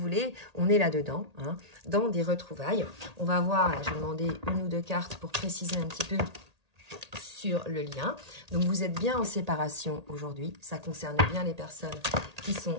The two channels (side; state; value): left; late; 1.8 ms